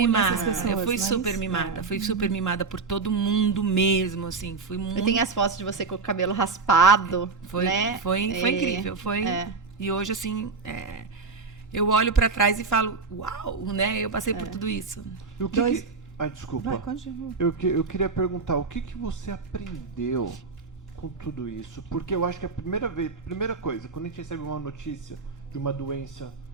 mimada. essas pessoas, Eu fui mas- super mimada. Fui super mimada por todo mundo mesmo, assim. Fui muito... Eu tenho as fotos de você com o cabelo raspado, Foi, né? foi incrível, foi. É. E hoje, assim, eu olho pra trás e falo, uau, né? Eu passei por tudo isso. E o que Dois- que... Ai, desculpa. Vai, continua. Eu queria perguntar, o que você aprendeu com tudo isso? Porque eu acho que a primeira coisa, quando a gente recebe uma notícia de uma doença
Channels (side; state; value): left; quieter; 4.5 dB